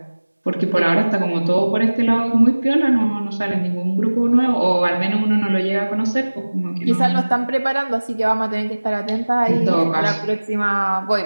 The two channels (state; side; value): inverted; both; correlation -1.00